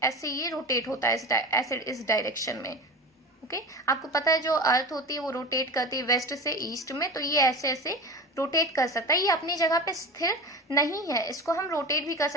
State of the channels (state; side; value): normal; both; correlation 0.31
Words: ऐसे ये रोटेट होता है ऐसे इस डायरेक्शन में। ओके। आपको पता है जो अर्थ होती है वो रोटेट करती है वेस्ट से ईस्ट में, तो ये ऐसे ऐसे रोटेट कर सकता है। ये अपनी जगह पे स्थिर नहीं है, इसको हम रोटेट भी कर